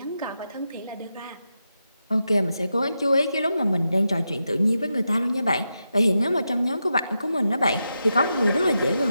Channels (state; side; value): inverted; both; correlation -0.88